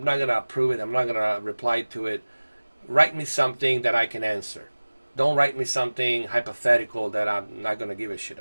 not going to approve it. I'm not going to reply to it. Write me something that I can answer. Don't write me something hypothetical that I'm not going to give a shit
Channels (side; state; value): both; inverted; correlation -1.00